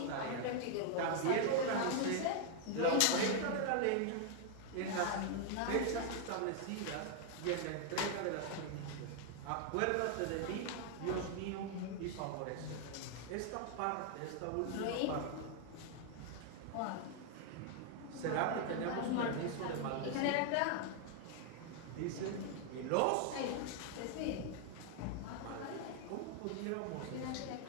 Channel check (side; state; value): both; different; correlation 0.00